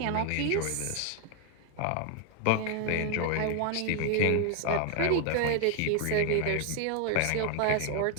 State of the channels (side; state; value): both; different; correlation 0.00